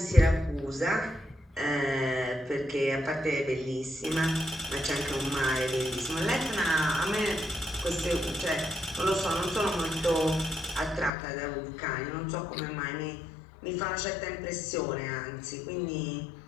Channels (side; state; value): right; drops out; at 11.1 s